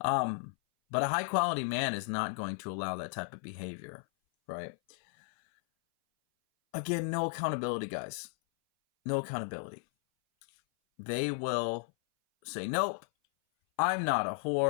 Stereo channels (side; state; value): right; silent; 55 dB below the other